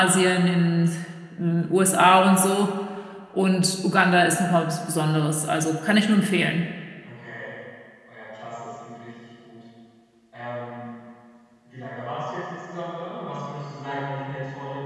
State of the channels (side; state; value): both; identical; correlation 1.00